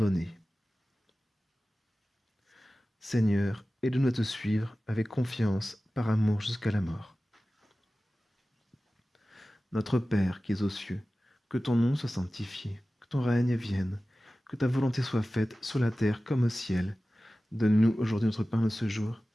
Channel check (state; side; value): normal; both; correlation 0.96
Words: Seigneur, aide-nous à te suivre avec confiance, par amour jusqu'à la mort. Notre Père qui es aux cieux, que ton nom soit sanctifié, que ton règne vienne, que ta volonté soit faite sur la terre comme au ciel. Donne-nous aujourd'hui notre pain de ce jour.